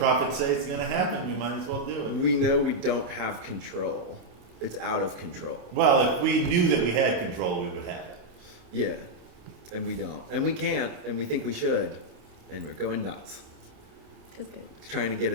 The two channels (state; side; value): late; left; 28 ms